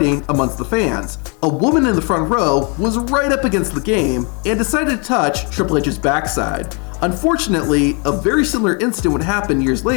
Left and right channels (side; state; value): right; quieter; 34.3 dB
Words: amongst the fans. A woman in the front row was right up against the Game and decided to touch Triple H's backside. Unfortunately, a very similar incident would happen years